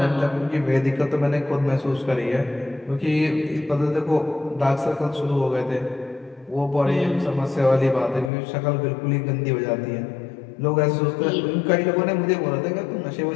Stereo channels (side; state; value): right; drops out; at 8.3 s